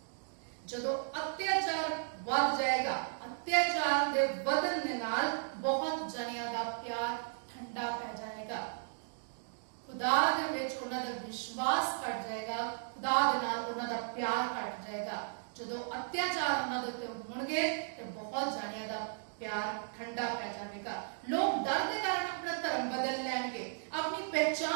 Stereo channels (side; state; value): left; silent; digital silence